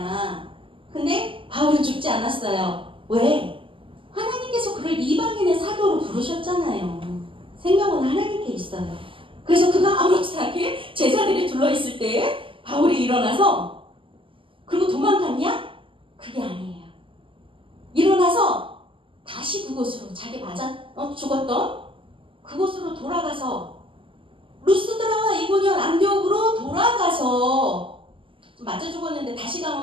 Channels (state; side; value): late; left; 0.25 ms